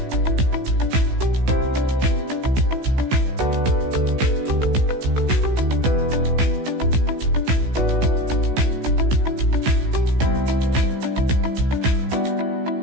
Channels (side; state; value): left; late; 15 ms